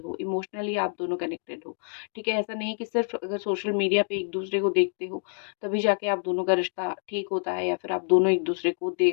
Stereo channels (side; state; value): right; silent; digital silence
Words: इमोशनली आप दोनों कनेक्टेड हो, ठीक है? ऐसा नहीं कि सिर्फ अगर सोशल मीडिया पे एक दूसरे को देखते हो तभी जाके आप दोनों का रिश्ता ठीक होता है, या फिर आप दोनों एक-दूसरे को